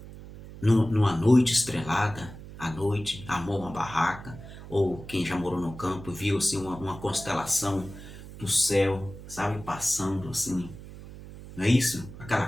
numa noite estrelada, à noite, amou uma barraca, ou quem já morou no campo viu assim, uma constelação do céu, sabe, passando assim, não é isso?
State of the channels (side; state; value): right; noise; hum, 15 dB below the sound